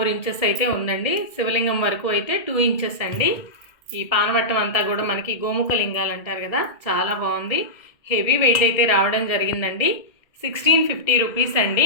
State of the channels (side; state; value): right; late; 1.8 ms